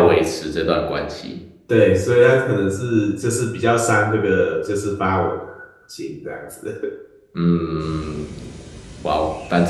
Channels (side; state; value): both; identical; correlation 1.00